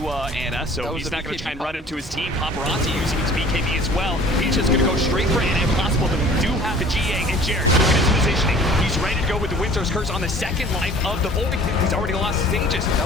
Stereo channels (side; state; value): both; normal; correlation 0.49